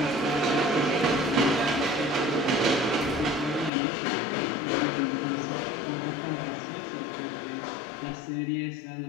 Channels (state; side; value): drops out; right; at 3.7 s